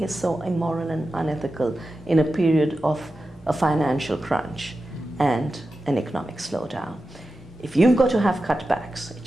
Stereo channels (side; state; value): both; normal; correlation 0.92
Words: is so immoral and unethical in a period of a financial crunch and an economic slowdown. If you've got to have cutbacks, it